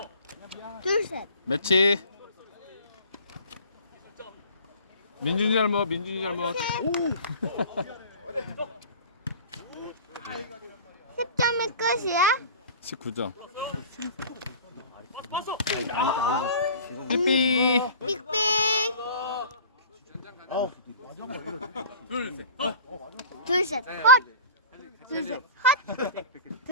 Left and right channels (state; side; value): inverted; both; correlation -0.42